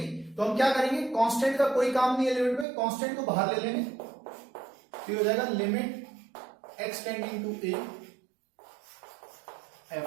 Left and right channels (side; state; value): left; drops out; at 2.7 s